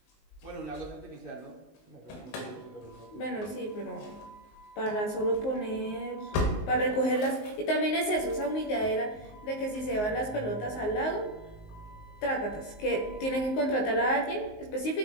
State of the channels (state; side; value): late; right; 19 ms